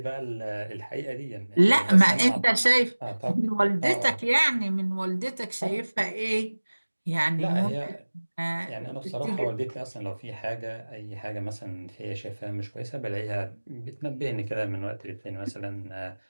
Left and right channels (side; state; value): both; inverted; correlation -1.00